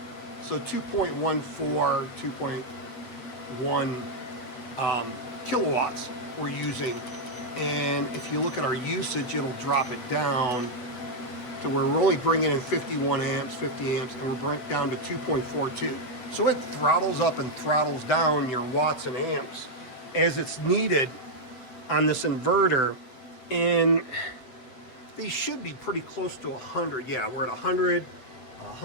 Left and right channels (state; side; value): late; right; 8.1 ms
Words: So 2.14, 2.1 kilowatts we're using. And if you look at our usage, it'll drop it down to where we're only bringing in 51 amps, 50 amps, and we're bringing down to 2.42. So it throttles up and throttles down your watts and amps as it's needed on this inverter. And these should be pretty close to 100. Yeah, we're at 100,